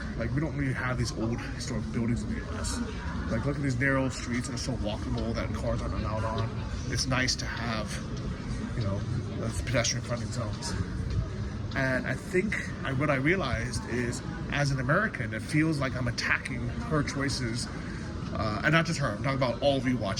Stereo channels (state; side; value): identical; both; correlation 1.00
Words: Like, we don't really have these old historic buildings in the US. Like, look at these narrow streets that are so walkable that cars aren't allowed on. It's nice to have, you know, pedestrian fronting zones. And I think what I realized is, as an American, it feels like I'm attacking her choices. And not just her, I'm talking about all of you